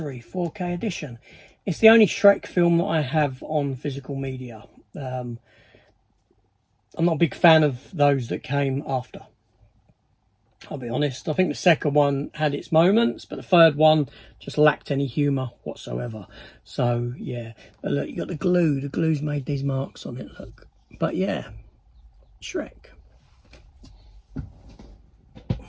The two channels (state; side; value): identical; both; correlation 1.00